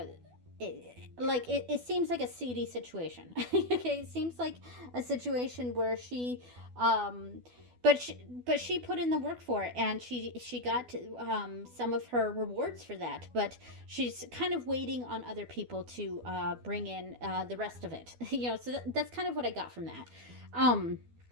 it seems like a seedy situation. Okay, it seems like a situation where um but she put in the work for it, and she got some of her rewards for that, but she's kind of waiting on other people to bring in the rest of it. So that's kind of what I got from that. um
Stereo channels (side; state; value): left; late; 12 ms